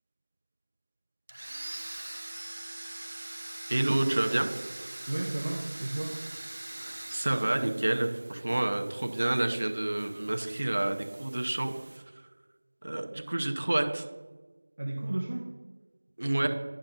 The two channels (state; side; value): inverted; both; correlation -1.00